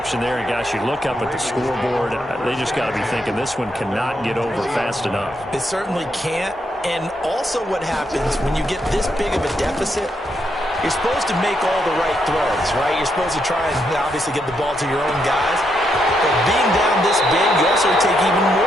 there. And, gosh, you look up at the scoreboard. They just got to be thinking this one cannot get over fast enough. It certainly can't. And also what happens when you get this big of a deficit, you're supposed to make all the right throws, right? You're supposed to try and obviously get the ball to your own guys. But being down this big, you also take even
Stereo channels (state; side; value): normal; both; correlation 0.79